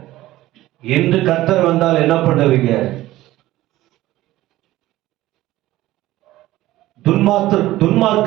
இன்று கர்த்தர் வந்தால் என்ன பண்ணுவீங்க?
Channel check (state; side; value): quieter; left; 16.1 dB